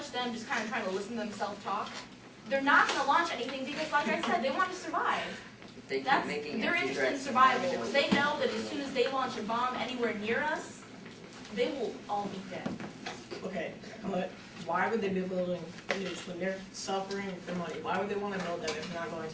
them just kind of trying to listen to themselves talk. They're not going to launch anything because, like I said, they want to survive. If they keep That's, making they're empty interested in threats, survival. Because they know that as soon as they launch a bomb anywhere near us, they will all be dead. Okay, but why would they be building nukes when they're suffering for money? Why would they wanna build them if they're not going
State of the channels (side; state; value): both; identical; correlation 1.00